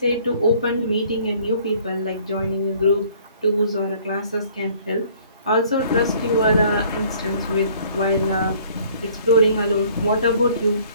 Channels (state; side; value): inverted; both; correlation -0.57